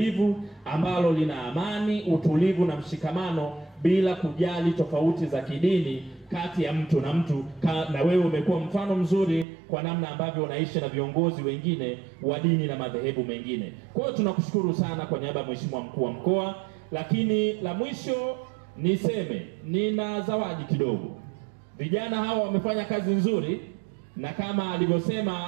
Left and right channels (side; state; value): left; drops out; at 9.5 s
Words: ambalo lina amani, utulivu na mshikamano bila kujali tofauti za kidini kati ya mtu na mtu. Na wewe umekuwa mfano mzuri kwa namna ambavyo unaishi na viongozi wengine wa dini na madhehebu mengine. Kwa hiyo tunakushukuru sana kwa niaba ya Mheshimiwa mkuu wa mkoa. Lakini la mwisho niseme, nina zawadi kidogo. Vijana hawa wamefanya kazi nzuri, na kama